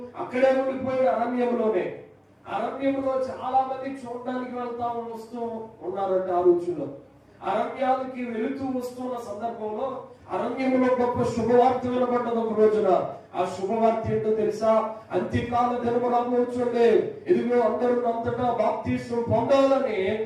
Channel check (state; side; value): identical; both; correlation 1.00